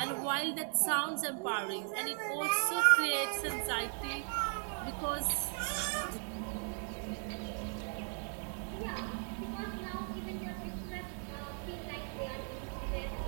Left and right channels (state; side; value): silent; left; 53 dB below the other